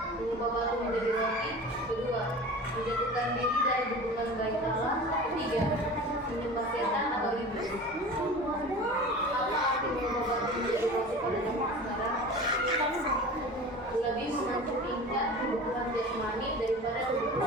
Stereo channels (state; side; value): normal; both; correlation 0.36